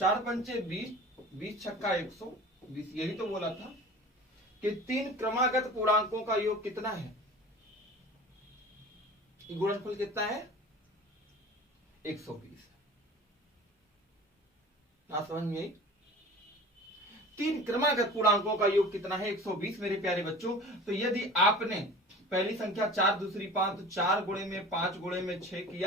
पंचे 20, 20 छक्का 120। यही तो बोला था कि 3 क्रमागत पूर्णांकों का योग कितना है, गुणनफल कितना है, 120। ना समझ में आई? 3 क्रमागत पूर्णांकों का योग कितना है, 120 मेरे प्यारे बच्चों। तो यदि आपने पहली संख्या 4, दूसरी 5, तो 4 गुणे में 5 गुणे में 6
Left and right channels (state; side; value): normal; both; correlation 0.39